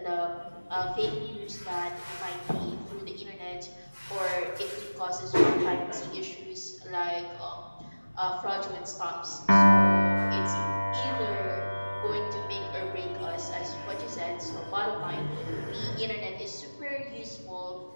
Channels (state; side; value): inverted; both; correlation -1.00